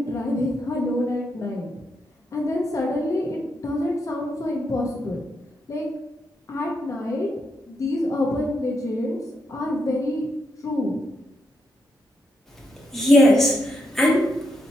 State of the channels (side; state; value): both; normal; correlation 0.81